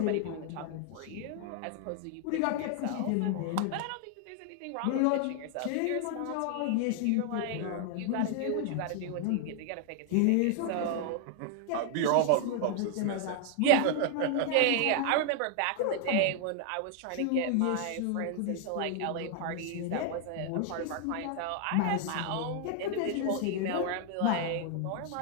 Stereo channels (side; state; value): both; different; correlation 0.00